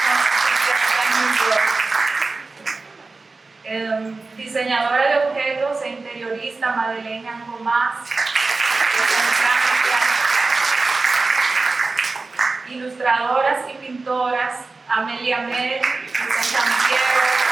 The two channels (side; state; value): left; quieter; 3.8 dB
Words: diseñadora de objetos e interiorista Madeleine Gomás, ilustradoras y pintoras Amelia Mel, San Diego,